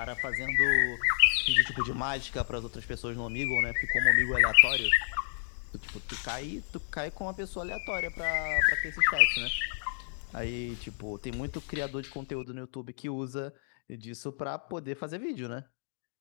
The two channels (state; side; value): silent; right; digital silence